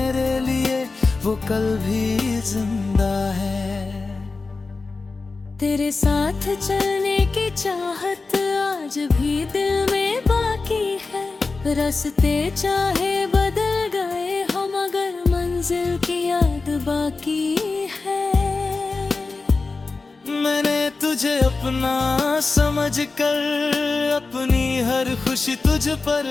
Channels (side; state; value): right; quieter; 3.9 dB